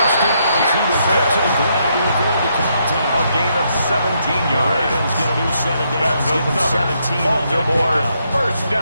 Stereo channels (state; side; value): inverted; both; correlation -0.76